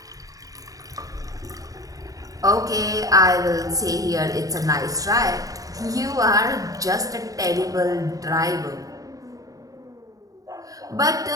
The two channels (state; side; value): late; left; 0.17 ms